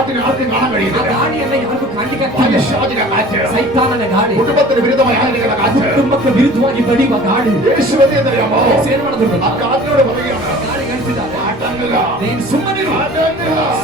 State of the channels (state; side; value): normal; both; correlation 0.45